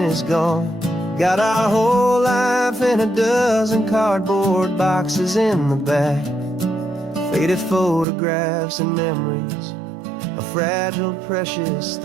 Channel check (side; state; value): left; drops out; at 8.1 s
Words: gone. Got our whole life in a dozen cardboard boxes in the back, faded photographs and memories, a fragile, precious